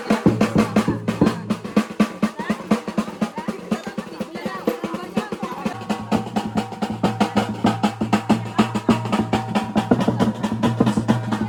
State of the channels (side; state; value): both; identical; correlation 1.00